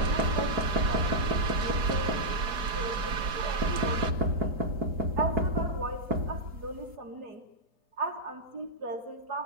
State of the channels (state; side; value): late; left; 4.9 ms